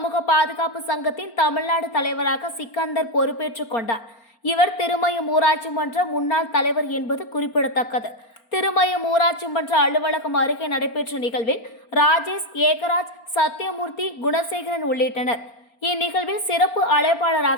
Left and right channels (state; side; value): late; right; 4.4 ms